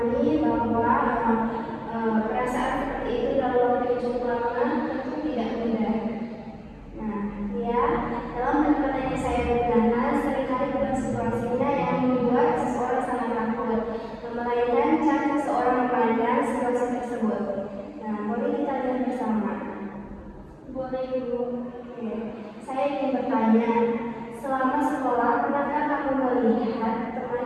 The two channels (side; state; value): both; identical; correlation 1.00